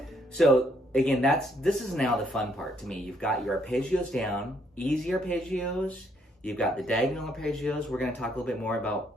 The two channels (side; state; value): both; normal; correlation 0.70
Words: So again, this is now the fun part to me. You've got your arpeggios down, easy arpeggios. You've got the diagonal arpeggios. We're going to talk a little bit more